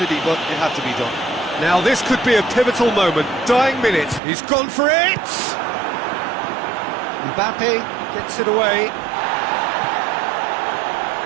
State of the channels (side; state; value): left; drops out; at 4.2 s